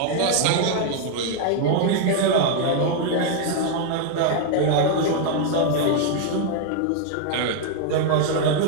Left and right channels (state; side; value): different; both; correlation 0.00